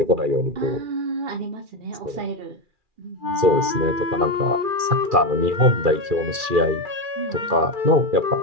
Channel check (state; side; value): late; left; 2.4 ms